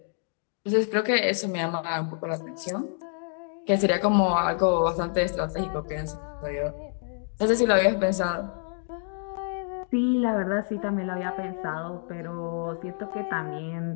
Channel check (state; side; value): silent; right; 60 dB below the other